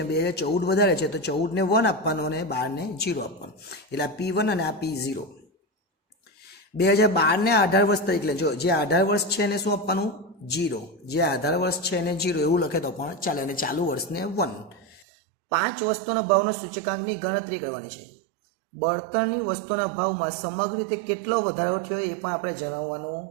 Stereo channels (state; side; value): drops out; left; at 15.1 s